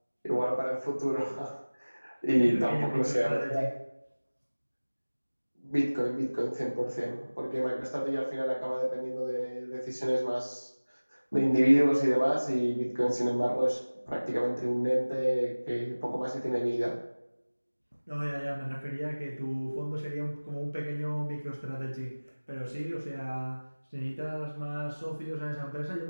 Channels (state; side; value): inverted; both; correlation -1.00